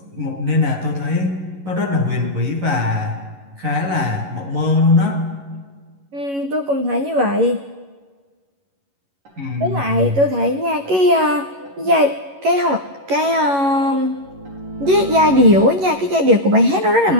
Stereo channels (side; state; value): left; late; 11 ms